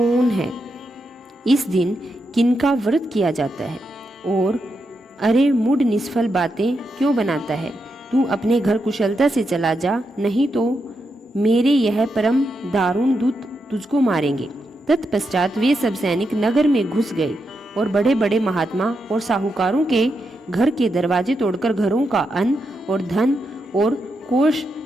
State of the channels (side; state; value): both; normal; correlation 0.84